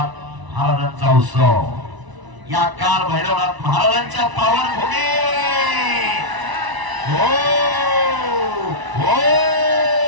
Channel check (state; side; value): late; left; 1.0 ms